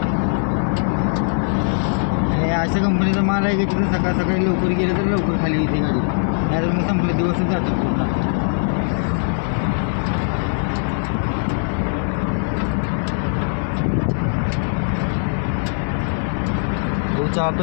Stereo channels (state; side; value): silent; right; 65 dB below the other